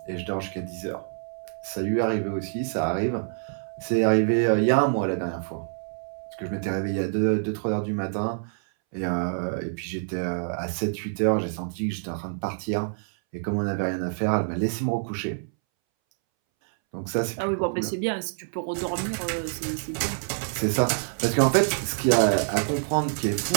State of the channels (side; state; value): left; silent; 60 dB below the other